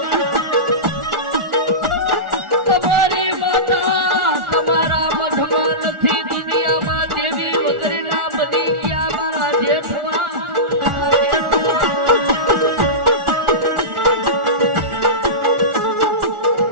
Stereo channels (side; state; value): left; late; 1.4 ms